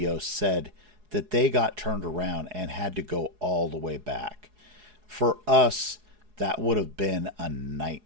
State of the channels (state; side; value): late; left; 4.8 ms